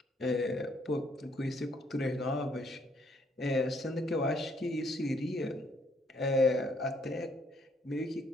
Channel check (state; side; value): normal; both; correlation 0.68